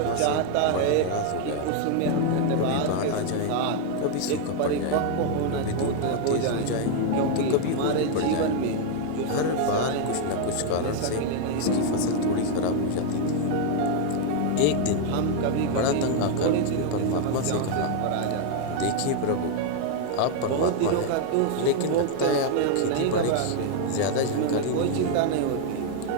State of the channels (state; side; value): different; both; correlation 0.00